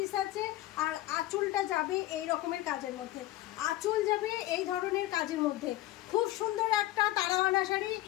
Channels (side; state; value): right; quieter; 15.9 dB